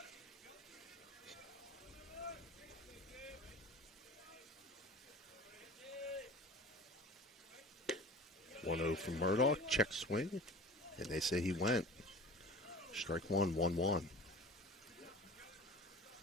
From Murdoch, check swing, and they say he went. Strike one, 1-1.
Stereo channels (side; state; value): both; normal; correlation 0.39